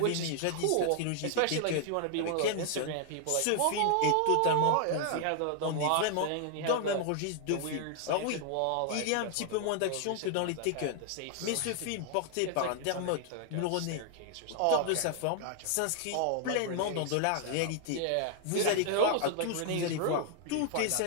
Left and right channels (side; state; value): both; different; correlation 0.00